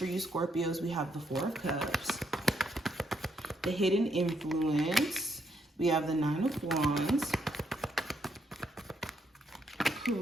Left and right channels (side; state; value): both; normal; correlation 0.75